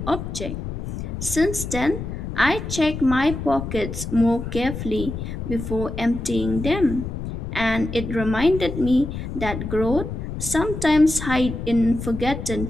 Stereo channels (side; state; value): left; noise; rumble, 6 dB below the sound